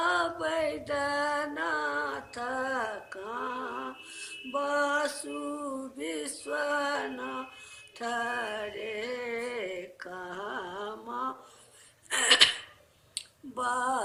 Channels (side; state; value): both; identical; correlation 1.00